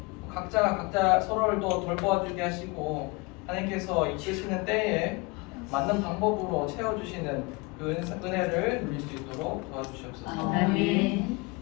각자가 각자 서로를 또 돌보아주게 하시고 하나님께서 이끄시는 때에 맞는 방법으로 채워주시는 그 은혜를 누릴 수 있도록 도와주시옵소서.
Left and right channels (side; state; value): right; quieter; 27.1 dB